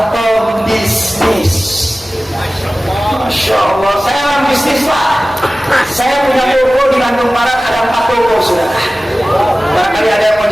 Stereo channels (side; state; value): both; normal; correlation 0.96